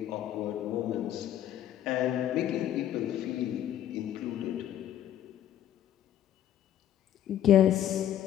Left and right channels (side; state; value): right; quieter; 11.4 dB